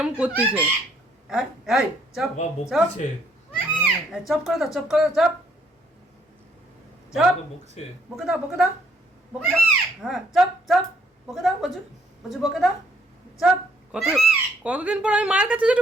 করতেছে। এই চপ বাবা চপ, বকছে, চপ করে দাও, চপ করে দাও, চপ চপ, বাবা বকছে। বকে দাও, বকে দাও, বকে দাও। হ্যাঁ, চপ চপ, বকে দাও, বজু বজু, বকে দাও, চপ কত কতদিন পর আমি মায়ের কাছে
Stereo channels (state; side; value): normal; both; correlation 0.67